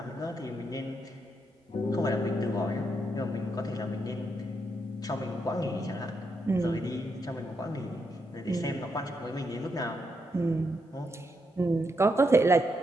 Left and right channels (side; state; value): both; normal; correlation 0.81